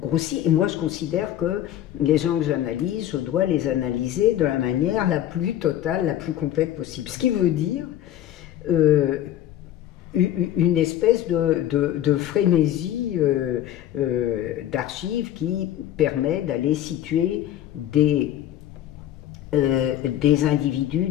Et moi, je considère que les gens que j'analyse, je dois les analyser de la manière la plus totale, la plus complète possible. Ce qui veut dire une espèce de frénésie d'archives qui permet d'aller situer des individus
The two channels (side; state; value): right; quieter; 12.0 dB